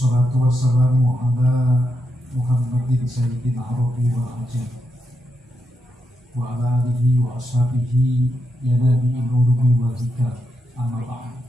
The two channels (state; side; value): normal; both; correlation 0.83